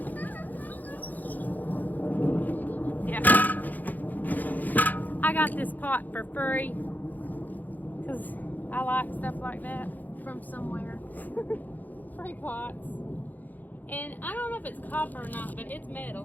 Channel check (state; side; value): late; right; 0.083 ms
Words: Yeah. I got this pot for free because I like stuff like that from somewhere. Free pots. And I don't know if it's copper or not, but it's